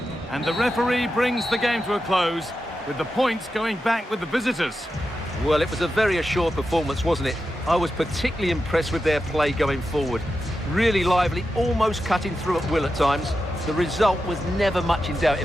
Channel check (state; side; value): normal; both; correlation 0.90